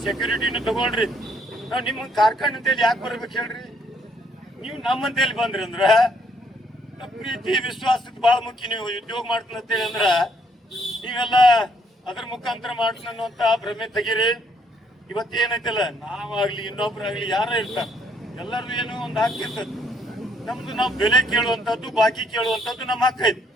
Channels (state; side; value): normal; both; correlation 0.69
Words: ಸೆಕ್ಯೂರಿಟಿನೂ ತಗೊಂಡ್ರಿ, ನಾವ್ ನಿಮ್ಮ ಕಾರ್ಖಾನೆ ಅಂತೇಳಿ ಯಾಕೆ ಬರ್ಬೇಕು ಹೇಳ್ರಿ. ನೀವು ನಮ್ಮಂತೇಳಿ ಬಂದ್ರಿ ಅಂದ್ರ ಪ್ರೀತಿ ವಿಶ್ವಾಸಕ್ಕೆ ಬಹಳ ಮುಖ್ಯ. ನೀವು ಉದ್ಯೋಗ ಮಾಡ್ತೀನಿ ಅಂತೇಳಿ ಅಂದ್ರ ನೀವೆಲ್ಲ ಅದ್ರ ಮುಖಾಂತರ ಮಾಡ್ತೀನಿ ಅನ್ನುವಂತ ಭ್ರಮೆ ತೆಗೀರಿ. ಇವತ್ತೇನೈತಲ್ಲ, ನಾವಾಗ್ಲಿ ಇನ್ನೊಬ್ರಾಗ್ಲಿ ಯಾರ ಇರ್ತಾರ, ಎಲ್ಲರದು ಏನೋ ಒಂದು ಹಾಕಿರ್ತದ. ನಮ್ದು ನಾವು ಬೆಲೆ ಕೇಳುವಂತದ್ದು, ಬಾಕಿ ಕೇಳುವಂತದ್ದು ನಮ್ಮ ಹಕ್ಕ ಐತಿ.